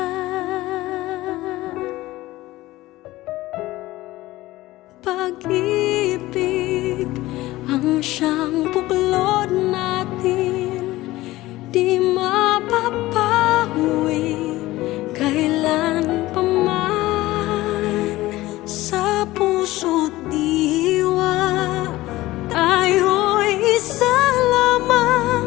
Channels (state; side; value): quieter; right; 17.7 dB